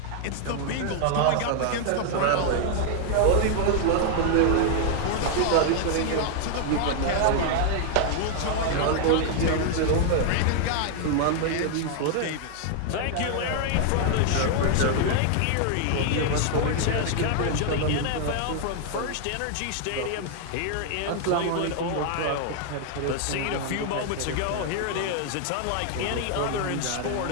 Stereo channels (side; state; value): both; different; correlation 0.00